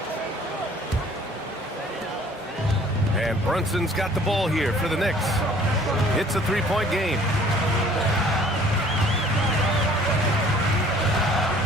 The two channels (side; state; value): both; normal; correlation 0.54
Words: And Brunson's got the ball here for the Knicks. It's a 3-point game.